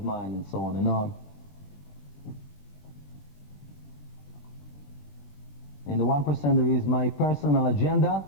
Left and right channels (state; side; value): late; right; 21 ms